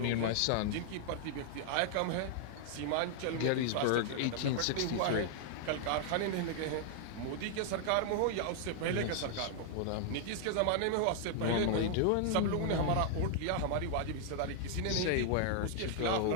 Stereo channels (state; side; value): different; both; correlation -0.01